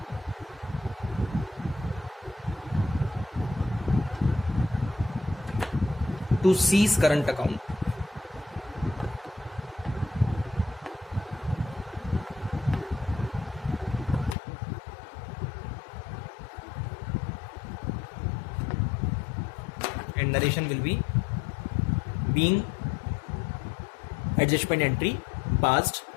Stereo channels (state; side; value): drops out; right; at 14.4 s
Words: to C's current account. And narration will be being adjustment entry passed